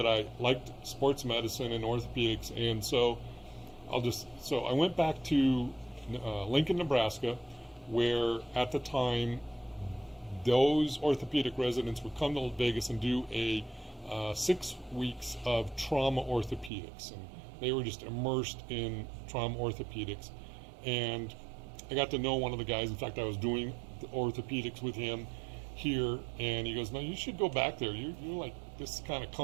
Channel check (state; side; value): drops out; left; at 16.7 s